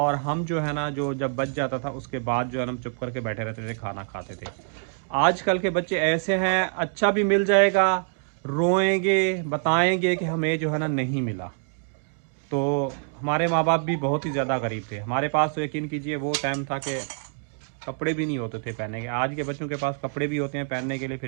हम जो है ना जो जब बच जाता था उसके बाद जो है ना हम चुप करके बैठे रहते थे, खाना खाते थे। आजकल के बच्चे ऐसे हैं, अच्छा भी मिल जाएगा रोएंगे, बताएंगे कि हमें जो है ना नहीं मिला। तो हमारे माँ बाप भी बहुत ही ज़्यादा गरीब थे। हमारे पास तो यकीन कीजिए वो टाइम था कि कपड़े भी नहीं होते थे पहनने के। आज के बच्चों के पास कपड़े भी होते हैं पहनने के लिए,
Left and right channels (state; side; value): silent; left; digital silence